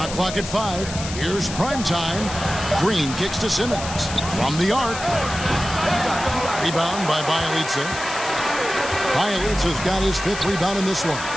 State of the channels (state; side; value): noise; left; hiss, 9 dB below the sound